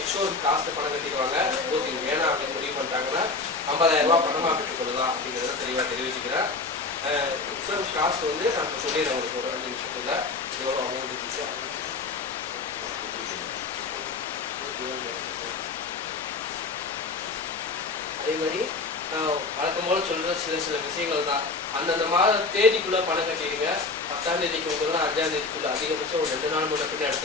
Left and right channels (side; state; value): right; quieter; 3.9 dB